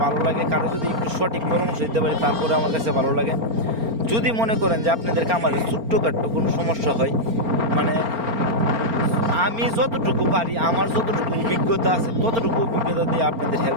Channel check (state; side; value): late; left; 4.4 ms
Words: ভালো লাগে, কারো যদি একটু সঠিক পরামর্শ দিতে পারে তারপরে আমার কাছে ভালো লাগে। যদি মনে করেন যে আপনাদের খামারে ছোট্টখাট্টো কোনো সমস্যা হয়, মানে আমি যতটুকু পারি, আমার যতটুকু অভিজ্ঞতা আছে ততটুকু অভিজ্ঞতা দিয়ে আপনাদের